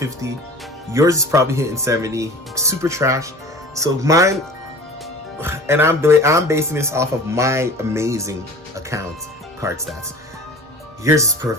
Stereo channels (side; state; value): both; normal; correlation 0.41